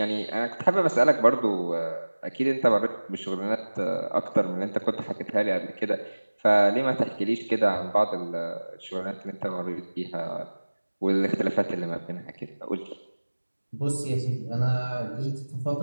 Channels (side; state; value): both; inverted; correlation -1.00